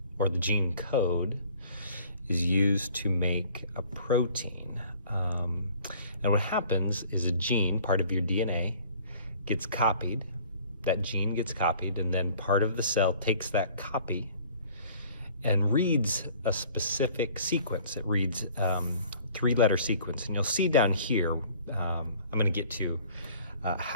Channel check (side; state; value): both; inverted; correlation -0.52